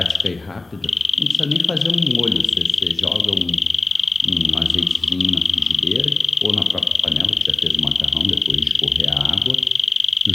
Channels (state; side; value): quieter; right; 3.2 dB